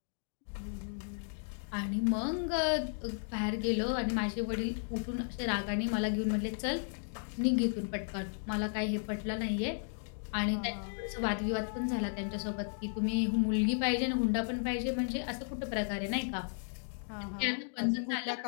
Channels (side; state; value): right; silent; digital silence